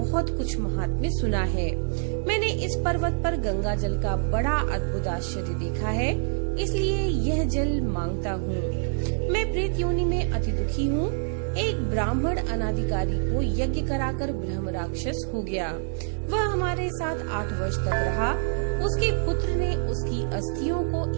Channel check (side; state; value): left; silent; digital silence